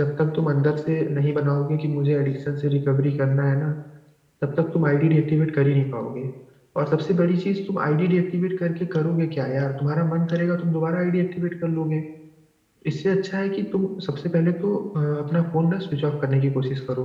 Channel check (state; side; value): identical; both; correlation 1.00